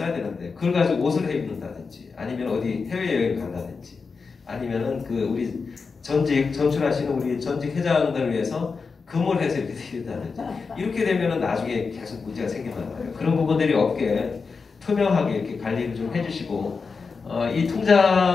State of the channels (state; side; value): quieter; right; 4.9 dB